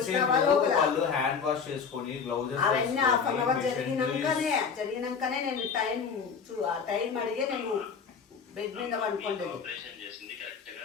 సేపు వాళ్ళు హ్యాండ్ వాష్ చేసుకొని గ్లౌజెస్ అవన్నీ హాఫ్ అన్ అవర్ జరిగినాకనే నేను టైం అడిగే నేను బెడ్ మీద పడుకోండి.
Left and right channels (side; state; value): right; quieter; 6.1 dB